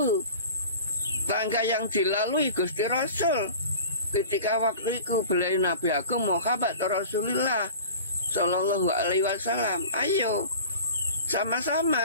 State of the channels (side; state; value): both; inverted; correlation -0.40